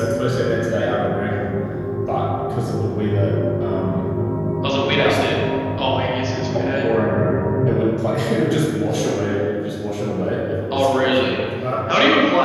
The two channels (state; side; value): identical; both; correlation 1.00